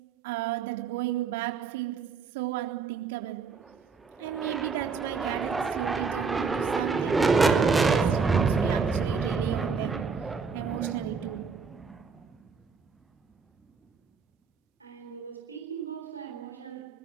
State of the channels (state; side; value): quieter; left; 5.2 dB